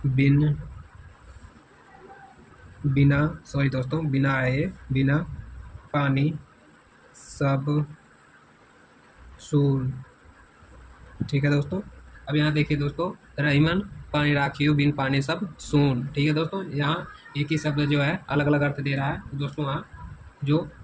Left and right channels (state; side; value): identical; both; correlation 1.00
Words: बिना पानी सब सून, ठीक है दोस्तों। अब यहाँ देखिए दोस्तों, रहीमन पानी राखियो बिन पानी सब सून, ठीक है दोस्तों। यहाँ एक ही शब्द जो है अलग अलग अर्थ दे रहा है, तो दोस्तों वहाँ जो